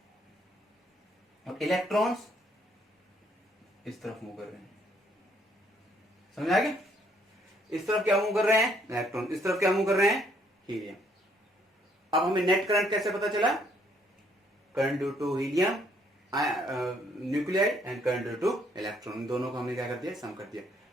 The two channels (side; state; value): both; normal; correlation 0.67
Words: और इलेक्ट्रॉन्स इस तरफ मूव कर रहे हैं। समझ आ गया, इस तरफ क्या मूव कर रहे हैं इलेक्ट्रॉन, इस तरफ क्या मूव कर रहे हैं हीलियम। अब हमें नेट करंट कैसे पता चला? Current due to helium nuclei and current due to electron, दोनों को हमने क्या कर दिया? सम कर दिया।